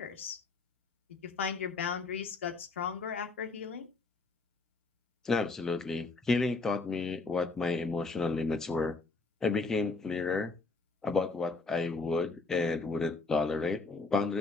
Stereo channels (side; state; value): right; quieter; 3.8 dB